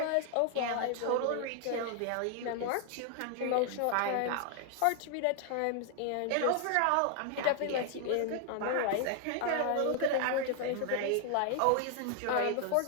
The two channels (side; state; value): both; different; correlation 0.00